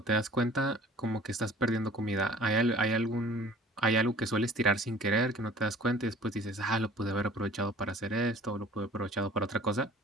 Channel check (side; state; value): both; normal; correlation 0.49